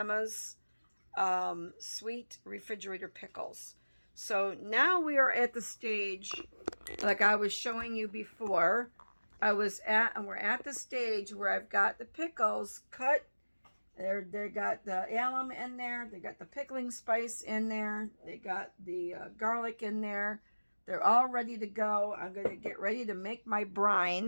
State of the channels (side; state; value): both; inverted; correlation -1.00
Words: sweet refrigerator pickles. So now we are at the stage, like I was showing you before. We're at the stage where I've got the pickles cut. They got the alum in there. They got the pickling spice in there. They got the garlic in there. They're all ready to go. I'm going to get ready to make my